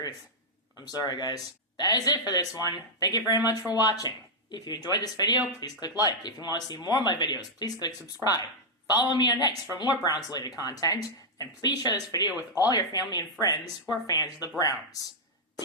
I'm sorry, guys. That is it for this one. Thank you very much for watching. If you enjoyed this video, please click like. If you want to see more of my videos, please click subscribe. Follow me on X for more Browns-related content, and please share this video with all your family and friends who are fans of the Browns.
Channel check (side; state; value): both; normal; correlation -0.06